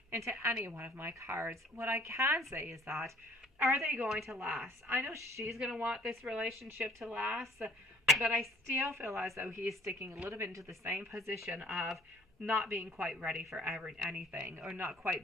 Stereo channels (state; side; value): normal; both; correlation 0.56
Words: into any one of my cards. What I can say is that, are they going to last? I know she's going to want this relationship to last, but I still feel as though he's sticking a little bit into the same position of not being quite ready for anything, or not quite